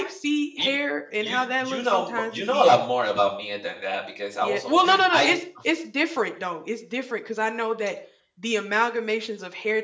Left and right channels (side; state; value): both; identical; correlation 1.00